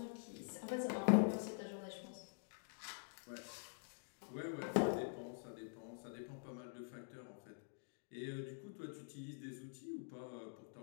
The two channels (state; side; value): silent; right; digital silence